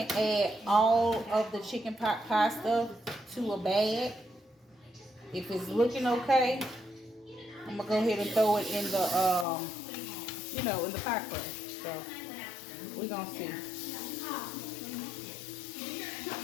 add all of the chicken pot pie stuff to a bag. If it's looking okay, I'm gonna go ahead and throw it in the in the pie crust. So we're gonna see.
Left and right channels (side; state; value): right; drops out; at 9.5 s